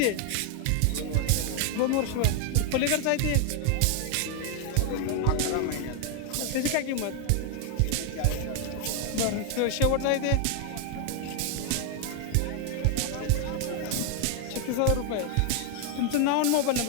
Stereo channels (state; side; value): different; both; correlation 0.01